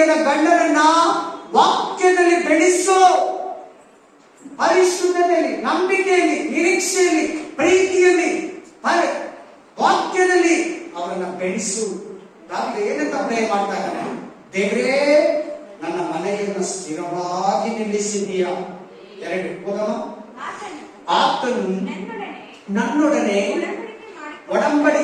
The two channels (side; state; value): both; identical; correlation 1.00